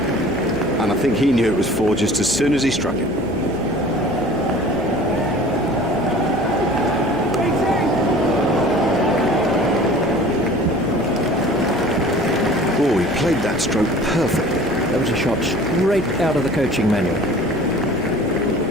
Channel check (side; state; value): left; noise; hum, 19 dB below the sound